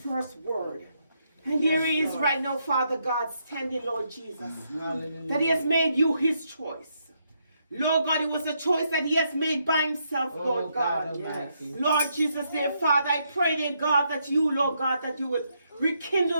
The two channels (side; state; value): both; inverted; correlation -0.78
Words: word. And here he is Lord. right now, Father God, standing, Lord Jesus. Hallelujah. That he has made you his choice. Lord God, it was a choice that he has made by himself, Oh, Lord God. Almighty. Lord Jesus, dear Father, I pray, dear God, that you, Lord God, that you would